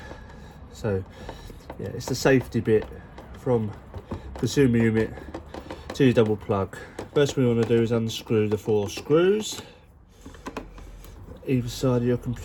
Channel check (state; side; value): identical; both; correlation 1.00